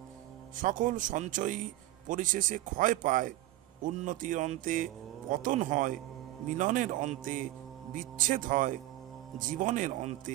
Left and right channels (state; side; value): quieter; left; 16.2 dB